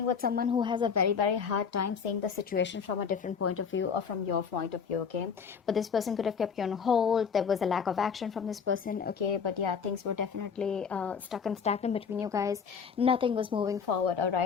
with someone who has a very, very hard time seeing the situation from a different point of view, or from your point of view, okay? But this person could have kept you on hold. There was a lack of action from this person, okay? But yeah, things were definitely stuck and stagnant between you guys. Nothing was moving forward, all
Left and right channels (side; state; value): right; quieter; 6.4 dB